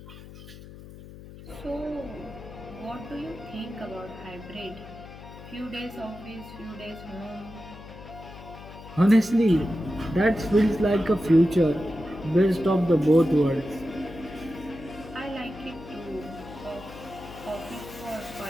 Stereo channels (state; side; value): noise; left; hum, 16 dB below the sound